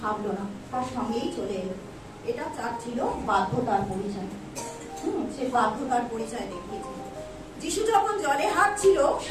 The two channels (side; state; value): both; identical; correlation 1.00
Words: ভাবলো না, তার সঙ্গেই চলে এলো। এটা তার ছিল বাধ্যতার পরিচয়। সে বাধ্যতার পরিচয় দেখিয়েছিল। যিশু যখন জলে হাঁটছিল,